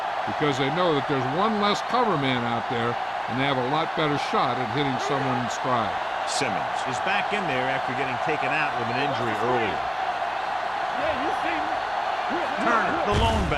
because they know that there's one less cover man out there, and they have a lot better shot at hitting someone in stride. Simmons is back in there after getting taken out with an injury earlier. Turner, the lone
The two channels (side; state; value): both; identical; correlation 1.00